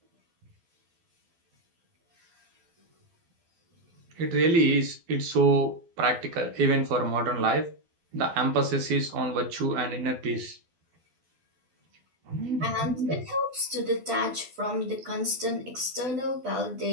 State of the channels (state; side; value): late; left; 12 ms